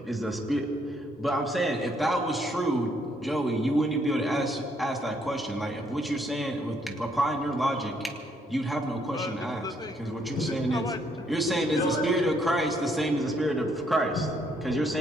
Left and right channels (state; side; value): normal; both; correlation 0.71